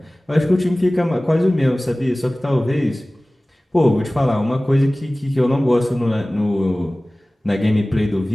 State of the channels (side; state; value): both; normal; correlation 0.98